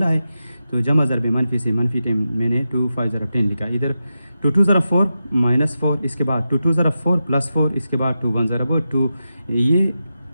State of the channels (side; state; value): both; inverted; correlation -0.90